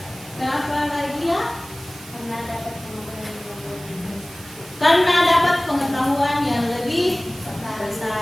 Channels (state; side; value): noise; right; hiss, 18 dB below the sound